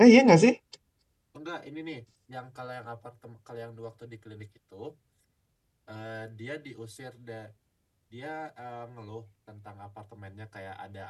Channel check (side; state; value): both; identical; correlation 1.00